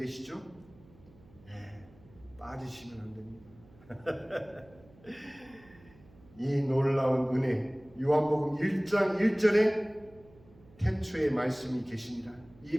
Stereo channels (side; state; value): right; noise; hum, 25 dB below the sound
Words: 네, 빠지시면 안 됩니다. 이 놀라운 은혜, 요한복음 1장 1절에 태초에 말씀이 계십니다. 이